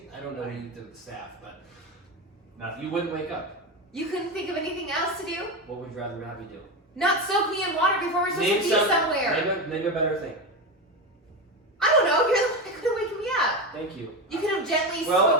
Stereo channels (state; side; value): normal; both; correlation 0.17